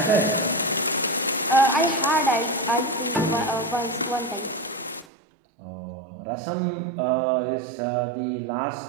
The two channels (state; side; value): drops out; left; at 5.1 s